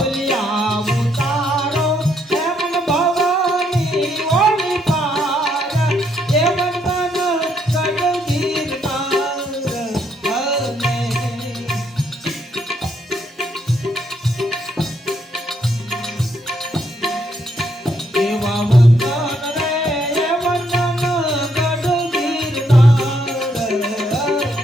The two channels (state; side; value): normal; both; correlation 0.73